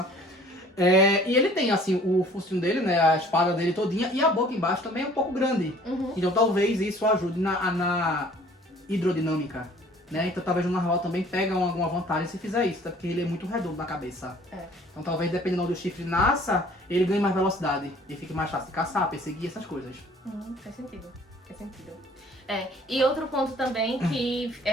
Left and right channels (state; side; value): normal; both; correlation 0.53